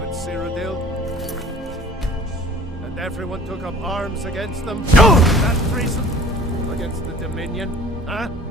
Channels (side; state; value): both; normal; correlation 0.48